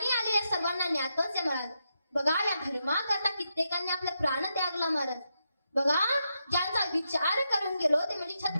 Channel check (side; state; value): both; inverted; correlation -0.84